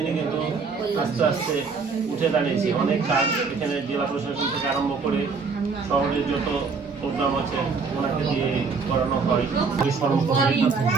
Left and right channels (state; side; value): quieter; left; 4.9 dB